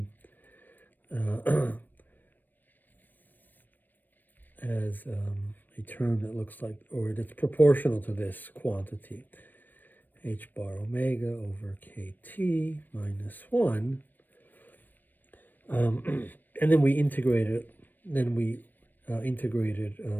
as a term that looks like, or that's proportional to this quantity. H bar omega over kT minus 1. And then we integrated, we integrated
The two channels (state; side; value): late; right; 0.090 ms